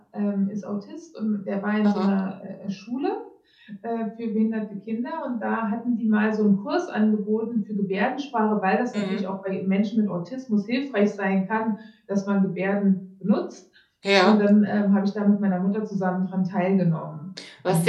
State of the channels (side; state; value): both; identical; correlation 1.00